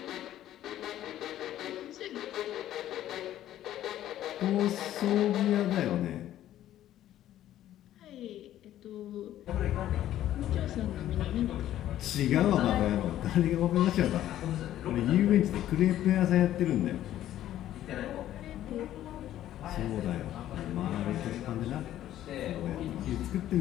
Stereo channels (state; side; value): quieter; right; 12.6 dB